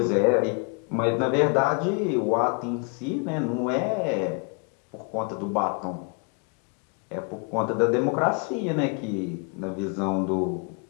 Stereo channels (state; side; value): quieter; right; 36.3 dB